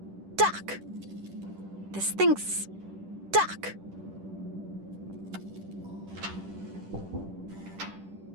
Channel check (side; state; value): left; late; 10 ms